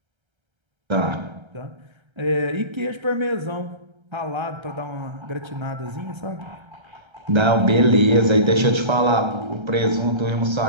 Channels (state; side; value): late; left; 1.3 ms